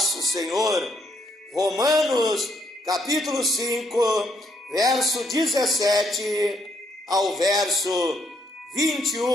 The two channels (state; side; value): normal; both; correlation 0.72